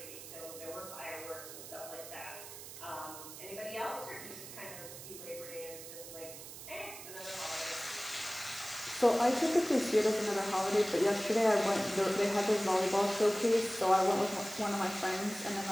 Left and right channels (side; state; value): right; noise; hiss, 13 dB below the sound